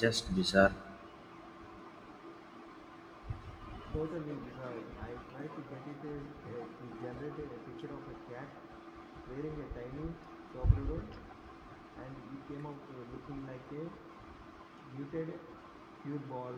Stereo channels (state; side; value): identical; both; correlation 1.00